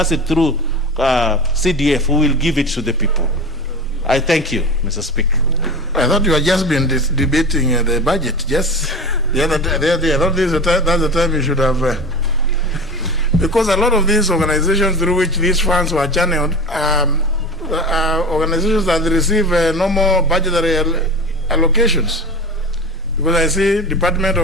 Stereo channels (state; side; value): normal; both; correlation 0.31